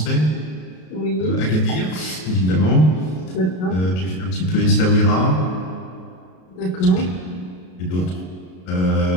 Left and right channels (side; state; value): right; late; 33 ms